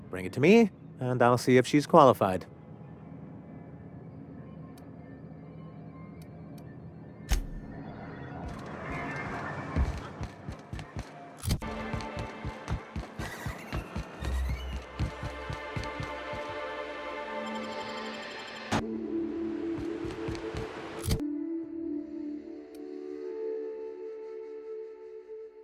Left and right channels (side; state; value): both; identical; correlation 1.00